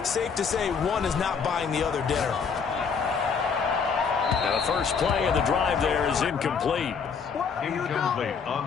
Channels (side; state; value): right; quieter; 6.0 dB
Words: Safe to say one is not buying the other dinner. Now the first play of the drive there is incomplete. Incomplete on